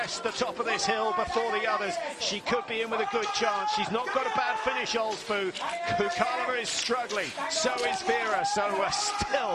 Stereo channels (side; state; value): both; identical; correlation 1.00